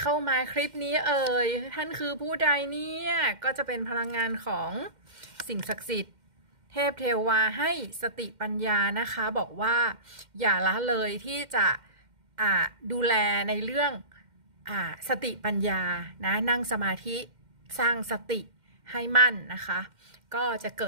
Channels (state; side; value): late; left; 2.1 ms